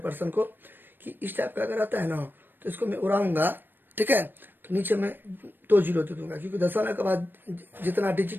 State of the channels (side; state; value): left; late; 0.095 ms